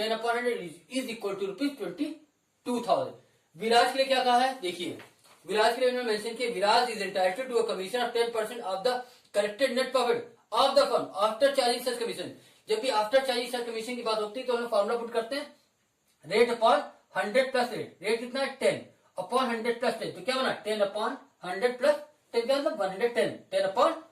upon 100 is equal to ₹22,000। Viraj के लिए क्या कहा है? देखिए विराज के लिए उन्होंने मेंशन किया, Viraj is entitled to a commission of 10% of the corrected net profit of the firm after charging such commission. जब भी आफ्टर चार्जिंग सच कमीशन की बात होती है तो हम फार्मूला पुट करते हैं rate upon 100 plus rate. Rate कितना है? 10 अपॉन 100 प्लस 10, तो क्या बना? 10 अपॉन 100 प्लस 10 का मतलब 110, 10 अपॉन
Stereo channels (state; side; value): identical; both; correlation 1.00